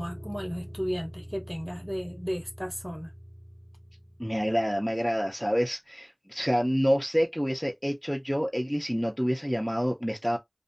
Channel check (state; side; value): identical; both; correlation 1.00